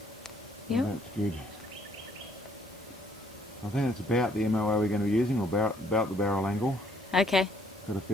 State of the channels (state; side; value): normal; both; correlation 0.65